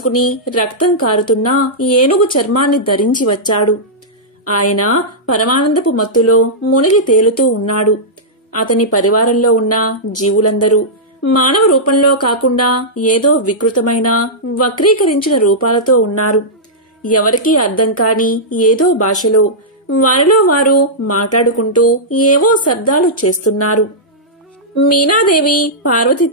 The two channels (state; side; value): normal; both; correlation -0.11